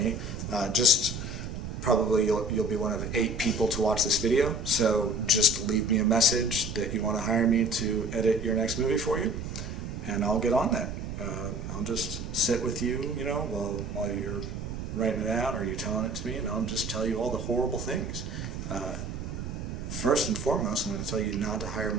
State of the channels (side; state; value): right; noise; rumble, 7 dB below the sound